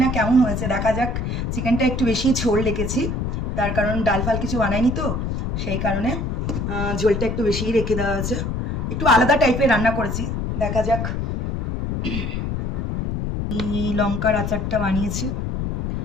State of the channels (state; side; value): noise; left; rumble, 2 dB below the sound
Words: না কেমন হয়েছে, দেখা যাক। চিকেনটা একটু বেশি ঝোল রেখেছি, তার কারণ ডাল ফাল কিছু বানাইনি তো, সেই কারণে ঝোলটা একটু বেশিই রেখে দেওয়া হয়েছে। একটু আলাদা টাইপের রান্না করেছি, দেখা যাক। এই লঙ্কার আচারটা বানিয়েছি,